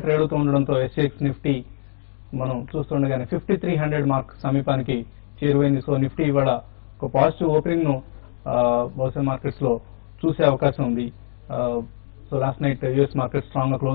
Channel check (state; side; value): silent; right; digital silence